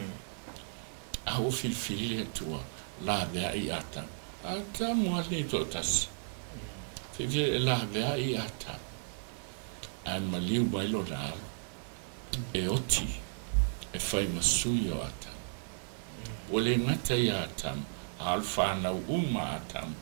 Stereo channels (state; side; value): silent; left; 55 dB below the other